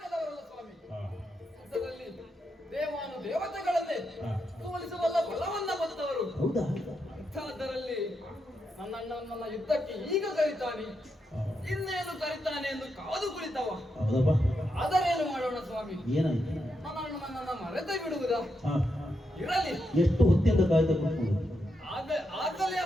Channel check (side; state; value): both; normal; correlation 0.84